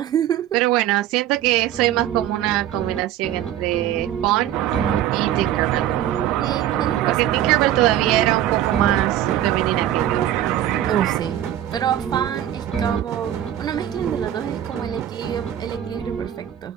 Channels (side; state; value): left; quieter; 11.9 dB